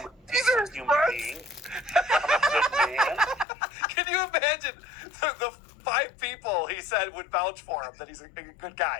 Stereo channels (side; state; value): right; drops out; at 3.5 s